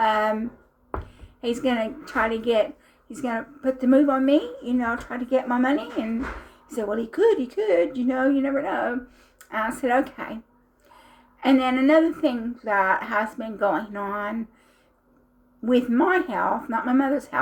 he's going to put the move on me, try to get my money? And he said, well, he could, you never know. And I said, okay. And then another thing that has been going on with my health, not my mother's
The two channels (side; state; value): both; identical; correlation 1.00